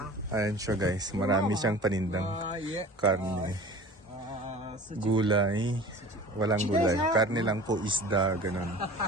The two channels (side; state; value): both; normal; correlation 0.40